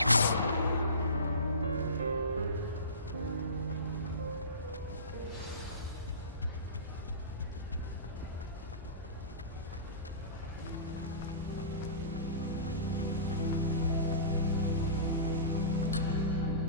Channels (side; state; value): both; inverted; correlation -0.32